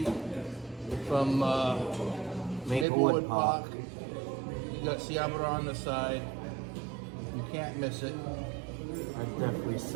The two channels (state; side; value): drops out; left; at 2.9 s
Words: from Maplewood Park. You got Ciabra on the side. You can't miss it. I'd definitely